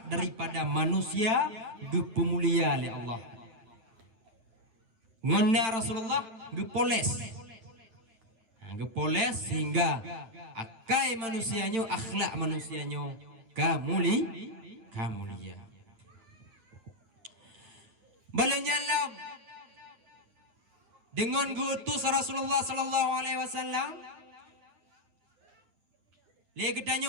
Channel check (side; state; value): left; late; 9.4 ms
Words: daripada manusia gepemulia oleh Allah. Ngonna Rasulullah gepoles. Gepoles sehingga akai manusianya, akhlak manusianya kamulia. Balenyalam dengan gutus Rasulullah sallallahu alaihi wasallam